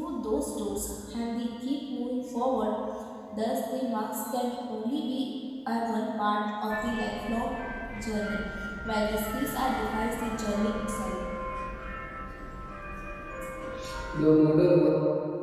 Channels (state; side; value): identical; both; correlation 1.00